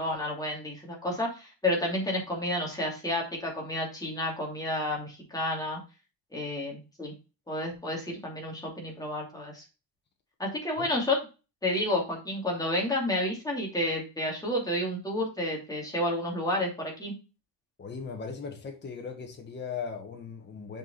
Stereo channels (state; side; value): normal; both; correlation 0.10